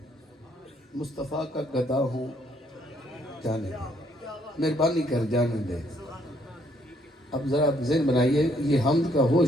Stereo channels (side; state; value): both; normal; correlation 0.69